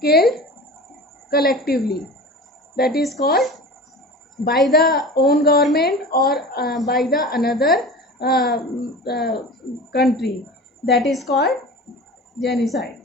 killed collectively. That is called by the own government or by the another country. That is called genocide.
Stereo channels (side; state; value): both; normal; correlation 0.35